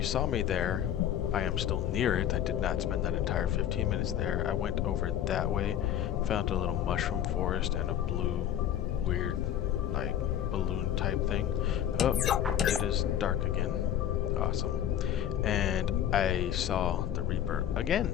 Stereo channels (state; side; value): quieter; right; 10.6 dB